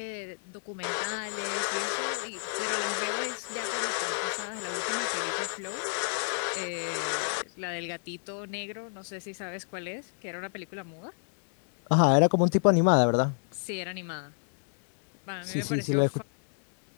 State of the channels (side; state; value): right; silent; 58 dB below the other